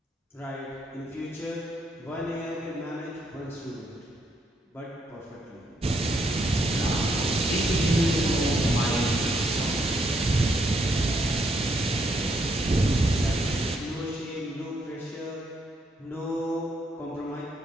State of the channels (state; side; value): normal; both; correlation 0.75